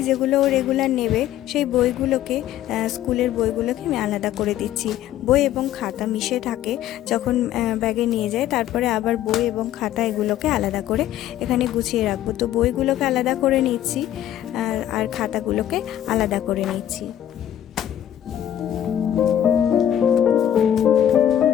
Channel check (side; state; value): right; quieter; 11.4 dB